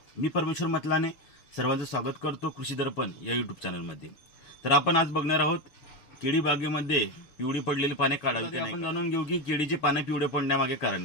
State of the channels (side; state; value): right; late; 6.8 ms